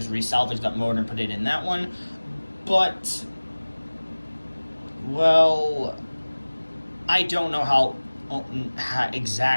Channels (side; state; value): both; inverted; correlation -1.00